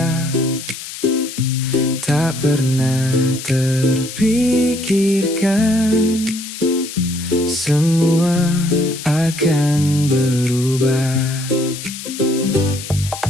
Tak pernah terpikirkan semua akan berubah.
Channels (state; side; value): noise; left; hiss, 11 dB below the sound